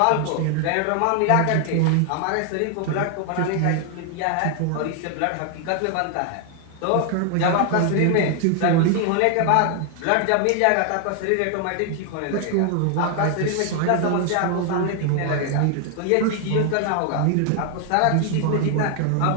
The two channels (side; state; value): both; different; correlation 0.00